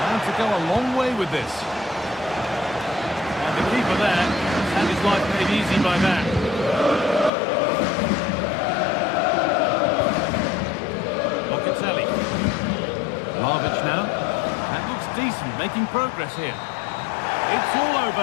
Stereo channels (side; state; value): right; drops out; at 7.3 s